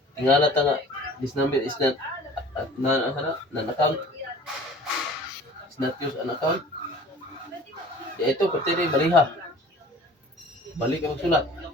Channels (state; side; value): normal; both; correlation 0.46